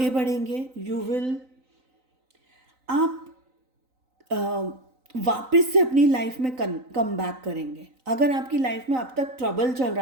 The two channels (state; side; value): late; left; 3.9 ms